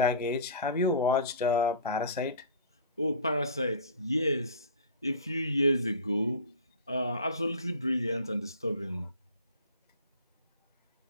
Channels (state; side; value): inverted; both; correlation -0.38